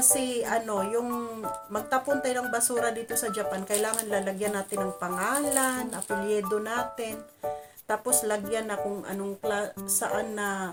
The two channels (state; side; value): identical; both; correlation 1.00